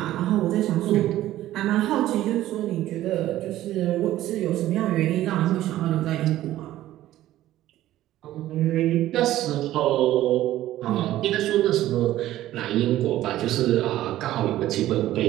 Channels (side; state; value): left; quieter; 14.2 dB